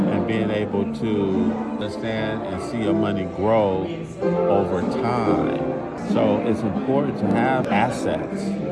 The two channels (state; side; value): identical; both; correlation 1.00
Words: being able to understand and see your money grow over time. So it's important to have assets,